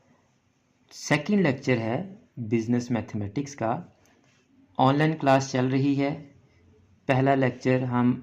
सेकंड लेक्चर है बिज़नेस मैथमेटिक्स का। ऑनलाइन क्लास चल रही है। पहला लेक्चर हम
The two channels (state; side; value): identical; both; correlation 1.00